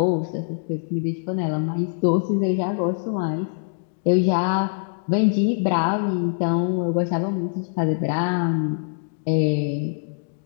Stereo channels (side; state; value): right; silent; digital silence